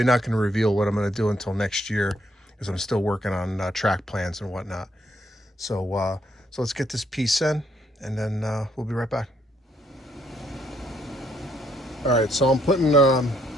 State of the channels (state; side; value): normal; both; correlation 0.71